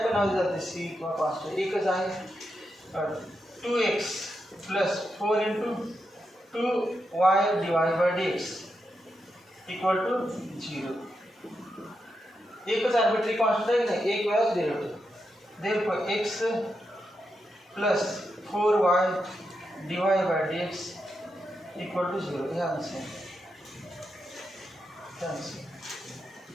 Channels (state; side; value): normal; both; correlation 0.85